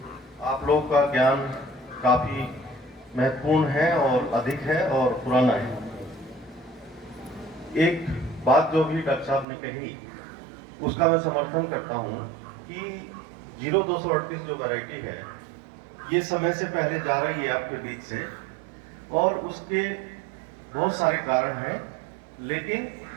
आप लोगों का ज्ञान काफ़ी महत्वपूर्ण है और अधिक है और पुराना है। एक बात जो भी डॉक्टर साहब ने कही उसका मैं समर्थन करता हूँ कि 0238 जो वैरायटी है ये समय से पहले जा रही है आपके बीच से, और उसके बहुत सारे कारण हैं, लेकिन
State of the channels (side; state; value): left; drops out; at 9.5 s